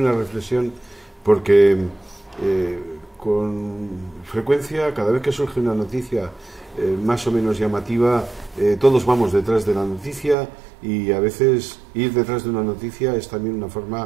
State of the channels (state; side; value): drops out; left; at 10.4 s